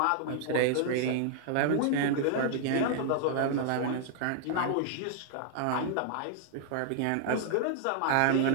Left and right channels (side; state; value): both; different; correlation 0.00